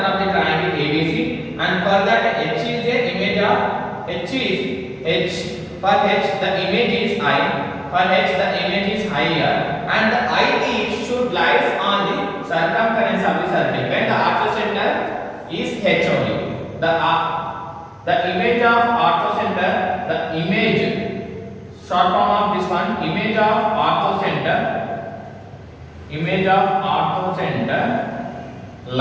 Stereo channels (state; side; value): identical; both; correlation 1.00